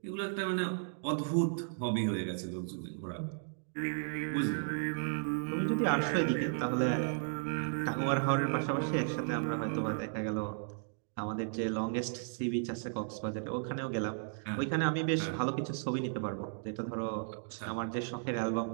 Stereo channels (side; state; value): left; silent; digital silence